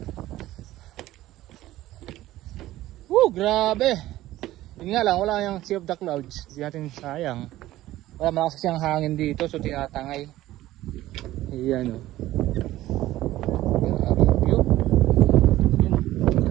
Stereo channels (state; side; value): quieter; left; 15.5 dB